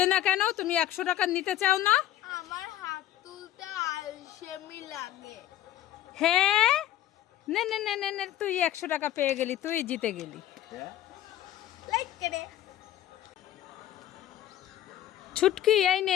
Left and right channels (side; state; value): right; quieter; 12.7 dB